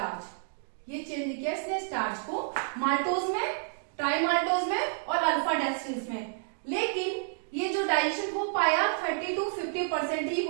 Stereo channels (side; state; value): left; silent; digital silence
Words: ये चेंज किया इसने स्टार्च को माल्टोज में, ट्राइमाल्टोज में और अल्फा डेक्स्ट्रिन्स में। लेकिन ये जो डाइजेशन हो पाया 30 to 50% ही